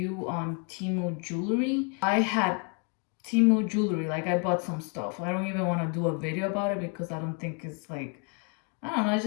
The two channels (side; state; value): right; quieter; 36.7 dB